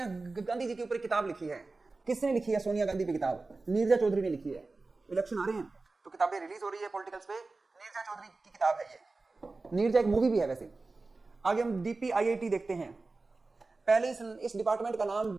गांधी जी के ऊपर किताब लिखी है। किसने लिखी है सोनिया गांधी पे किताब? नीरजा चौधरी ने लिखी है। इलेक्शन आ रहे हैं तो किताबें रिलीज हो रही है पॉलिटिकल्स पे, नीरजा चौधरी की किताब है ये। नीरजा एक मूवी भी है वैसे। आगे हम डीपीआईआईटी देखते हैं। पहले इस डिपार्टमेंट का नाम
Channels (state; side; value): quieter; left; 3.6 dB